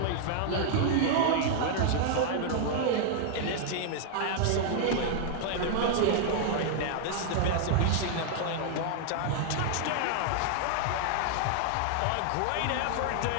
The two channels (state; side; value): different; both; correlation -0.01